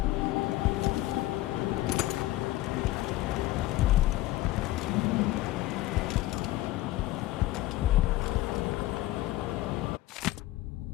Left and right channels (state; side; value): quieter; right; 16.6 dB